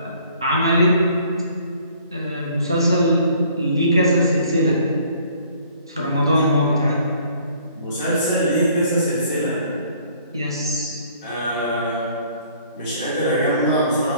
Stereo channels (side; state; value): both; inverted; correlation -0.58